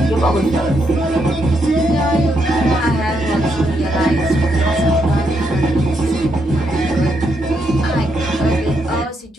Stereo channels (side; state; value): both; normal; correlation 0.78